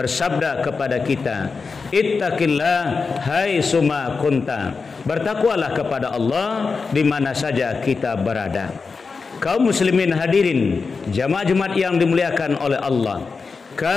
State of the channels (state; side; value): quieter; right; 4.7 dB